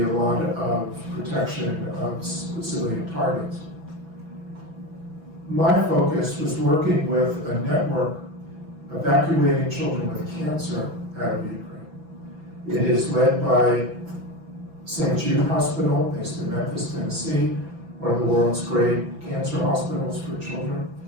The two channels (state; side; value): late; left; 6.0 ms